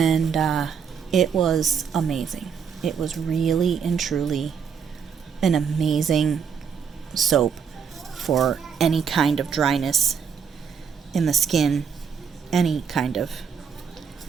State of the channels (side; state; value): left; quieter; 6.8 dB